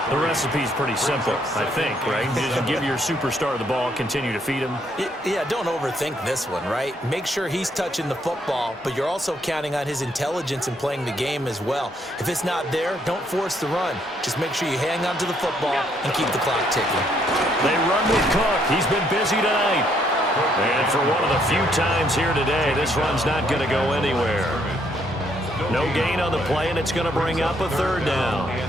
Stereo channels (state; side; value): normal; both; correlation 0.70